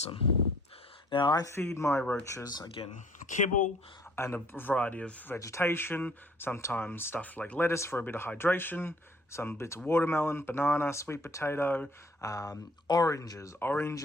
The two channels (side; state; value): both; normal; correlation 0.59